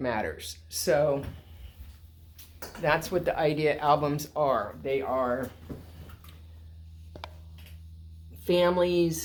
So that's what the idea albums are. They are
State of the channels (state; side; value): identical; both; correlation 1.00